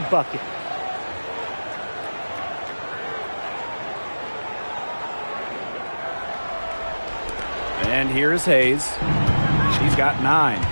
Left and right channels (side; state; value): both; inverted; correlation -1.00